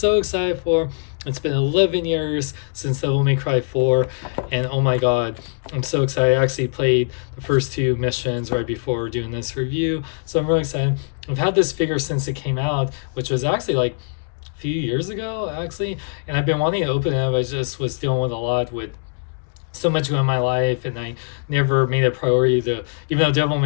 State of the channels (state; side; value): silent; right; digital silence